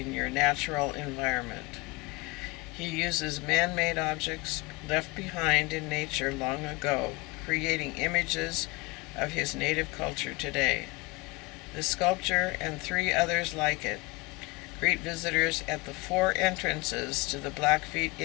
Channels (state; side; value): quieter; right; 24.3 dB